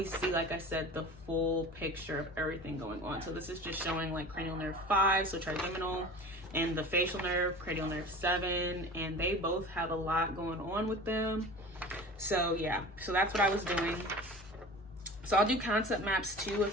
see, like I said, the full picture of everything going on. So this is just showing like cranial nerve 5, so trigeminal, and the facial nerve, cranial nerve 7, and they both have a lot going on with them. So yeah, so that's what I was doing. So I'll do concept maps too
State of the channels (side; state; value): both; normal; correlation 0.37